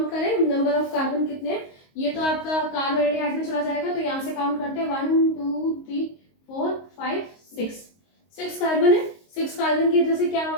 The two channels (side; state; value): right; late; 22 ms